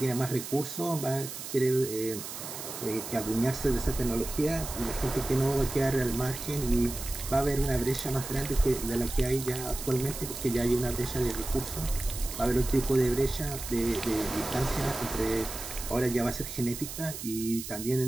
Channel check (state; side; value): noise; right; hiss, 9 dB below the sound